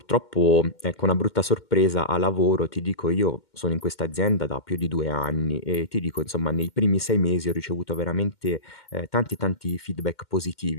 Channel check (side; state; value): right; late; 2.1 ms